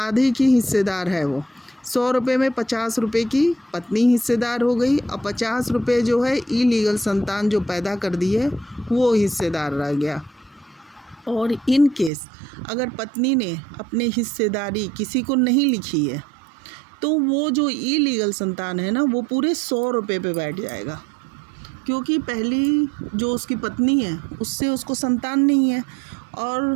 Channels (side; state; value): left; drops out; at 12.1 s